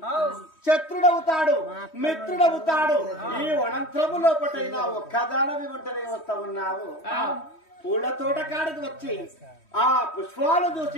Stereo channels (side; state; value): right; late; 3.1 ms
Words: శత్రుడవుతాడు, మిత్రుడవుతాడు. ఈ వనంత్రము లోపటైనా ఒక్కదానవి ఒంటరిగా వస్తా ఉన్నావు. పూల తోట కాడికి వచ్చి ఆ పుష్పాలు